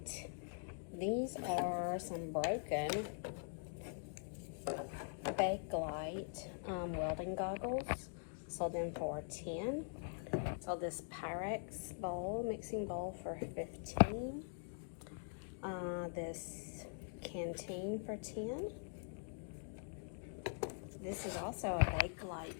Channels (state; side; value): silent; right; digital silence